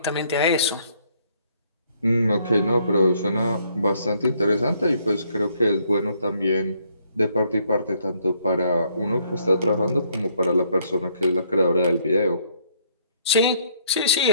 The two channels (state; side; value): inverted; both; correlation -0.68